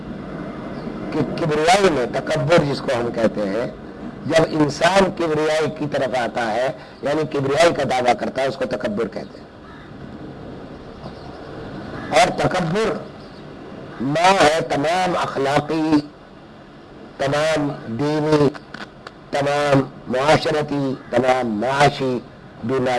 کہ کبریائی میں تکبر جس کو ہم کہتے ہیں, جب انسان کبریائی کی طرف آتا ہے یعنی کبریائی کا دعویٰ کرتا ہے, اس کو تکبر کہتے ہیں. اور تکبر ماں ہے تمام اخلاقی, تمام دینی, تمام معاشرتی, تمام معاشی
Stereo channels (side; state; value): both; identical; correlation 1.00